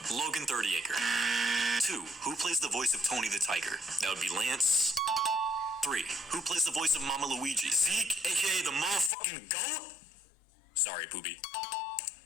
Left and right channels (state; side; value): drops out; right; at 9.1 s